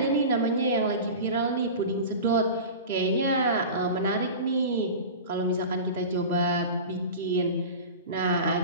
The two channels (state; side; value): inverted; both; correlation -0.32